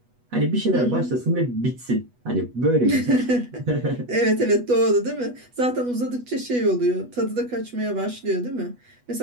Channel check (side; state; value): left; late; 8.2 ms